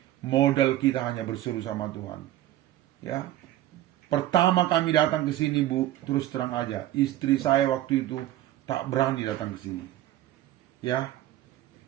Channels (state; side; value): quieter; left; 14.1 dB